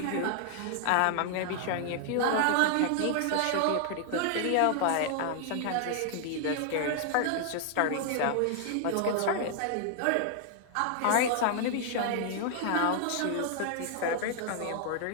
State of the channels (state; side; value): different; both; correlation 0.00